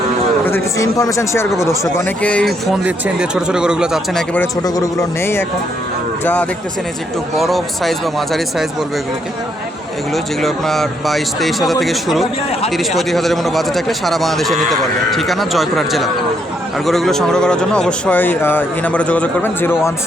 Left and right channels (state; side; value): normal; both; correlation 0.74